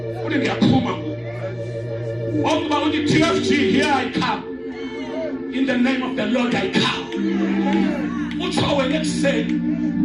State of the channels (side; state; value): both; identical; correlation 1.00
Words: What is their pool? All about the TFC, here I come. In the name of the Lord I come. What's our next say?